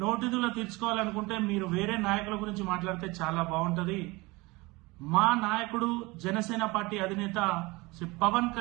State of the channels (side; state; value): left; quieter; 23.4 dB